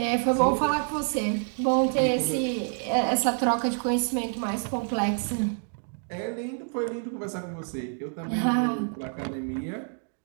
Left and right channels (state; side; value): silent; left; 55 dB below the other